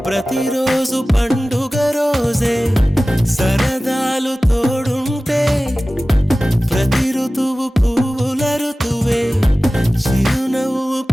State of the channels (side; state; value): both; normal; correlation 0.97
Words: ప్రతిరోజు పండుగ రోజే సరదాలు తోడుంటే ప్రతి ఋతువు పువ్వుల ఋతువే చిరునవ్వు